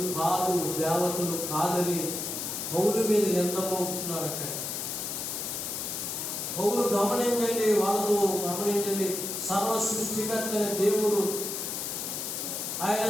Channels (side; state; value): left; noise; hiss, 4 dB below the sound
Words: కాదు, దేవతలు కాదని పౌలు మీద నిందమవుతున్నారు. అక్కడ పౌలు గమనించండి, వాళ్ళతో గమనించండి, సర్వ సృష్టికర్త దేవుడు, ఆయన